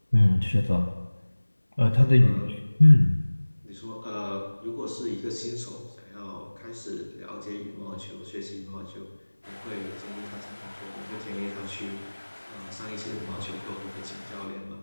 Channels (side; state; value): both; inverted; correlation -1.00